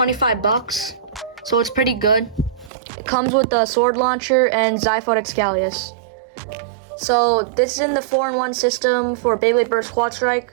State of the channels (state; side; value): drops out; left; at 2.7 s